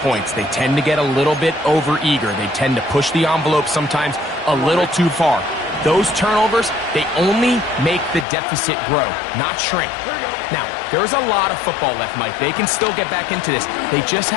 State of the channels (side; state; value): right; drops out; at 8.2 s